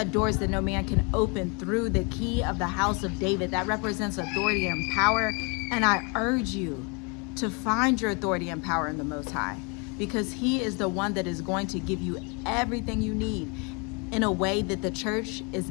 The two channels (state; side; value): quieter; right; 32.7 dB